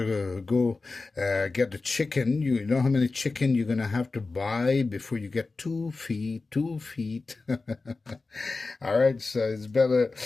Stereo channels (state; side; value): quieter; right; 3.8 dB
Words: go get the chicken, you know how many chicken you're going to have to buy before you get 2 feet. All right, so it's